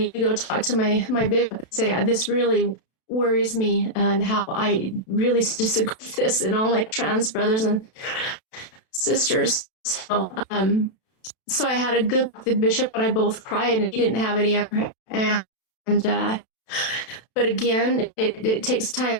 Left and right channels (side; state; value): right; late; 32 ms